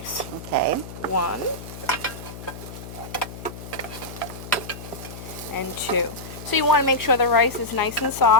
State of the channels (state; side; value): noise; left; hum, 12 dB below the sound